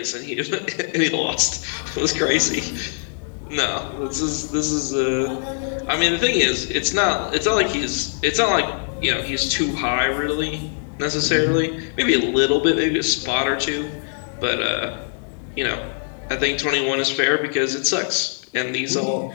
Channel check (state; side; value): silent; right; digital silence